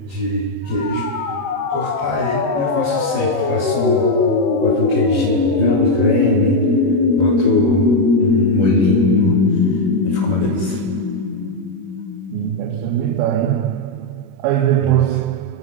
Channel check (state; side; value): late; left; 21 ms